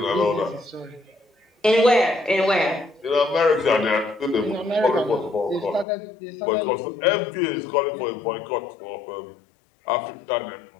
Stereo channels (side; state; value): right; drops out; at 5.9 s